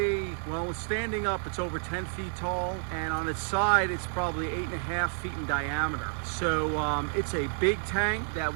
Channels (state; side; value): silent; left; 56 dB below the other